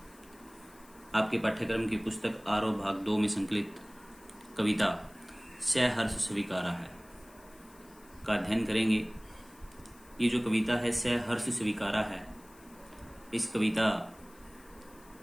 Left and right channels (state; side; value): noise; left; hiss, 25 dB below the sound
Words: आपके पाठ्यक्रम की पुस्तक आरोह भाग 2 में संकलित कविता सहर्ष स्वीकारा है का अध्ययन करेंगे। ये जो कविता है सहर्ष स्वीकारा है, इस कविता